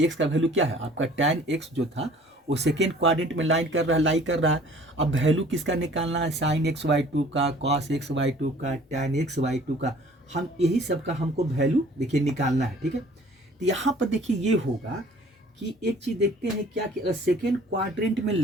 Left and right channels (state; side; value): normal; both; correlation 0.52